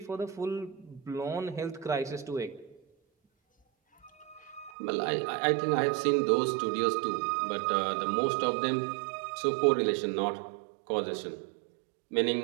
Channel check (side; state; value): left; drops out; at 4.7 s